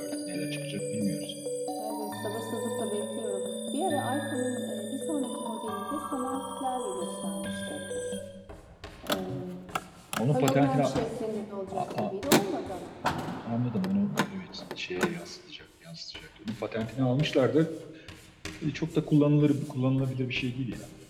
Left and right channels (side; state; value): both; identical; correlation 1.00